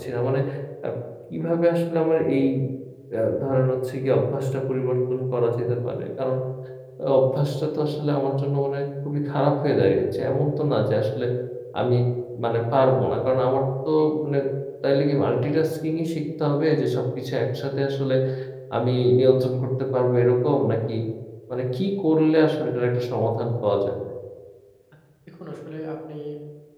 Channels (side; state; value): both; identical; correlation 1.00